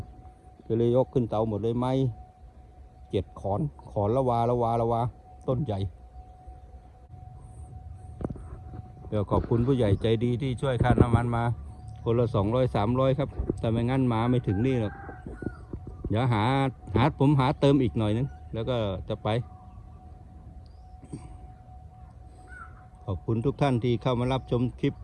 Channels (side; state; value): both; identical; correlation 1.00